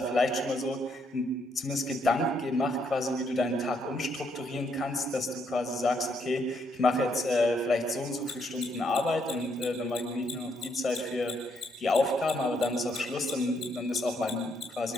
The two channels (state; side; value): normal; both; correlation 0.74